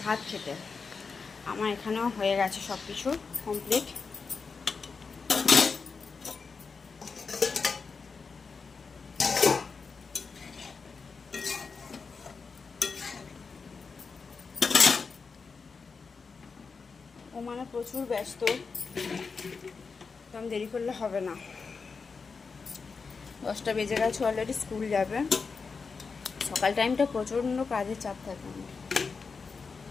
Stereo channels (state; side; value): quieter; right; 4.9 dB